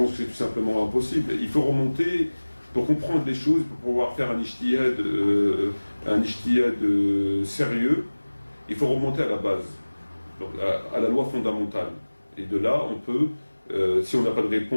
que c'est tout simplement impossible. Il faut remonter, pour comprendre les choses, pour pouvoir faire un ijtihad sérieux, il faut remonter à la base, donc à la loi fondamentale. Et de là, on peut, si on n'a pas de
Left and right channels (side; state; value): both; inverted; correlation -1.00